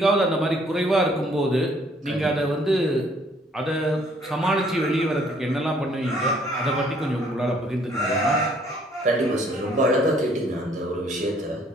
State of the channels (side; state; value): both; normal; correlation 0.62